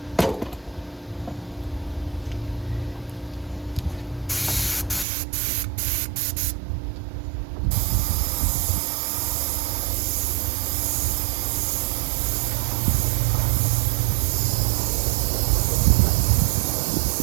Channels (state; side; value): drops out; left; at 5.1 s